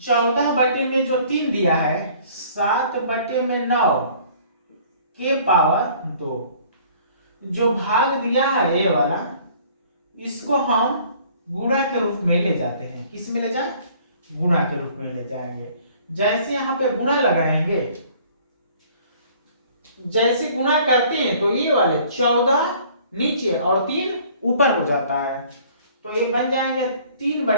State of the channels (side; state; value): both; inverted; correlation -0.54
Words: 14 जो 3 दिया है 7/9 के पावर 2, जो भाग दिया है ये वाला, इसको हम गुणा के रूप में ले जाते हैं। किस में ले जाए? गुणा के रूप में ले जाएंगे। जैसे यहां पे गुणा लगाएंगे, जैसे गुणा करते हैं तो ये वाले 14 नीचे और 3 ऊपर हो जाता है, तो ये बन जाएंगे